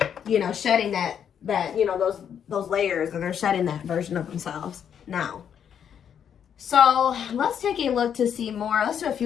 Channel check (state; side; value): quieter; right; 8.4 dB